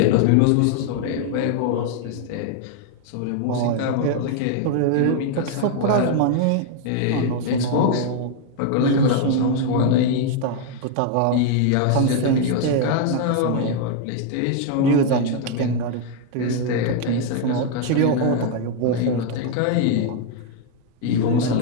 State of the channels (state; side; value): different; both; correlation 0.00